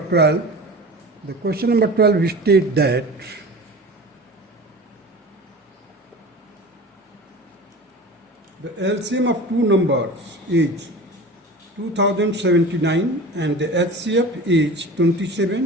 The question number 12 states that the LCM of two numbers is 2079 and the HCF is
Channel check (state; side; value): normal; both; correlation 0.35